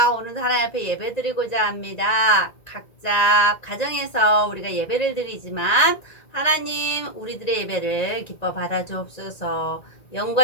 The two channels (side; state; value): right; late; 1.9 ms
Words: 오늘도 하나님 앞에 예배 드리고자 합니다. 각자 가정에서 우리가 예배를 드리지만 하나님 우리들의 예배를 기뻐 받아주옵소서.